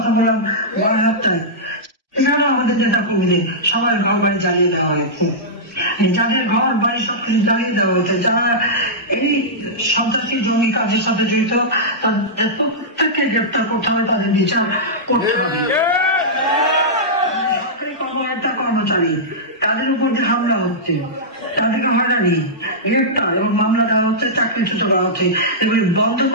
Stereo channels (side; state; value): both; normal; correlation -0.12